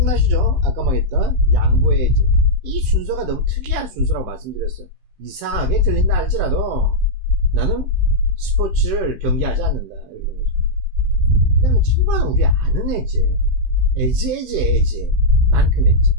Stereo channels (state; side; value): late; left; 16 ms